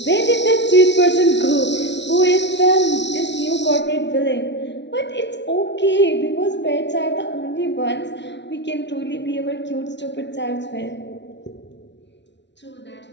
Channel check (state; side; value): late; right; 0.51 ms